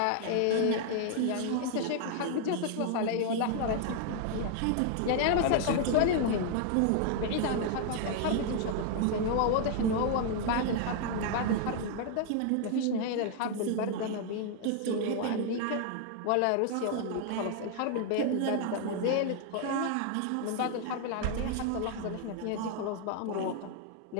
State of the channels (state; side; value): different; both; correlation 0.00